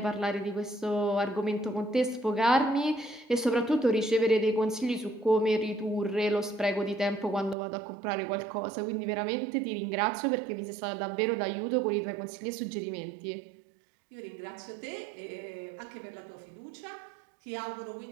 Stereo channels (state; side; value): drops out; left; at 7.6 s